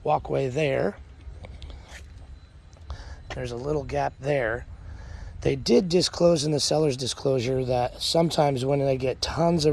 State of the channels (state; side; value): identical; both; correlation 1.00